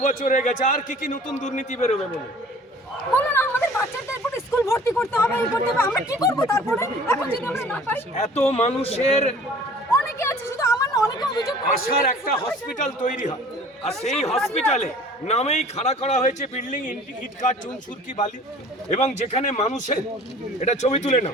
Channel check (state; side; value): normal; both; correlation 0.48